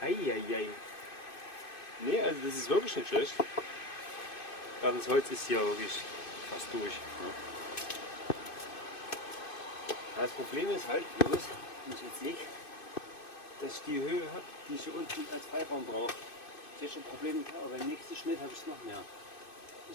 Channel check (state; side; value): late; right; 2.6 ms